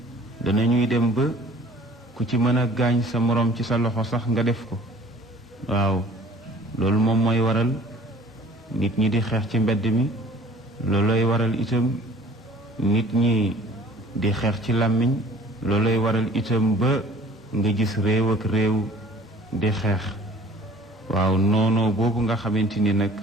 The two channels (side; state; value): both; normal; correlation 0.49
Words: danañuy dem ba ku ci mën a gaañ sa morom ci sa loxo sax nga def ko. waaw loolu moom mooy waral nit ñi di xeex ci mbedd mi, loolooy waral itam nit ñi di xeex ci làmmiñ, loolooy waral itam ba nga gis réew ak réew di xeex. waaw noonoo boobu nga xamante ni nag